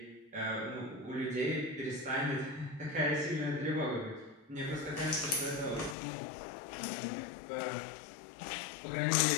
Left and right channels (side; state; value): right; drops out; at 6.0 s